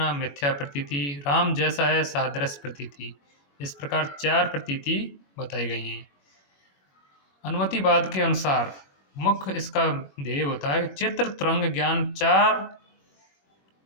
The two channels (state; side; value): late; right; 21 ms